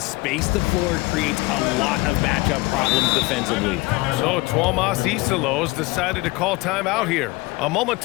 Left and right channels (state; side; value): quieter; right; 22.6 dB